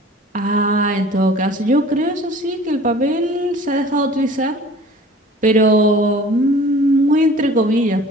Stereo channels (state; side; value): normal; both; correlation 0.46